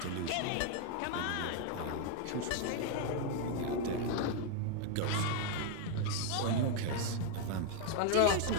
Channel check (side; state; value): both; different; correlation 0.01